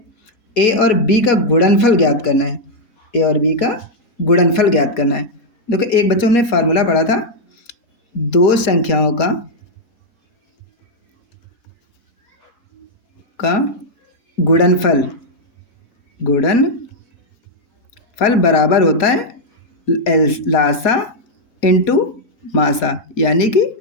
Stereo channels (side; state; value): right; late; 4.3 ms